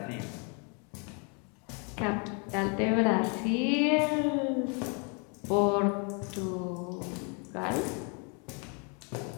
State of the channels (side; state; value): right; quieter; 36.2 dB